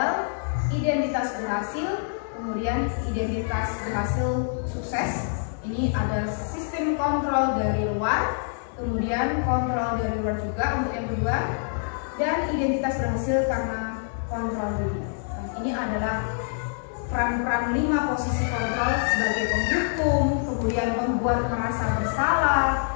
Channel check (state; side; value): silent; right; digital silence